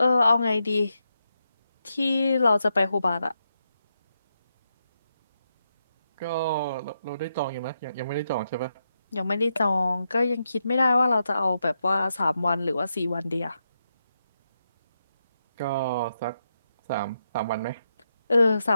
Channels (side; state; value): both; inverted; correlation -0.84